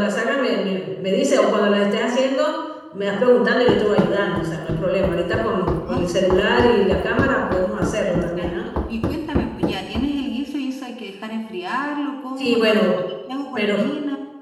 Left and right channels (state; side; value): identical; both; correlation 1.00